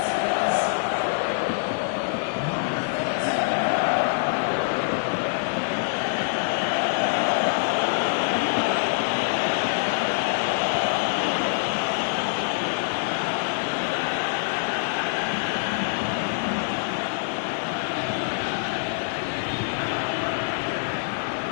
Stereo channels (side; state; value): right; silent; digital silence